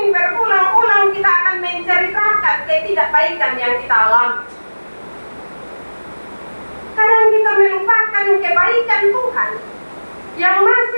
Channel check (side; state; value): both; inverted; correlation -1.00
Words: berulang-ulang kita akan menceritakan ketidakbaikan yang kita alami. Kadang kita melupakan kebaikan Tuhan yang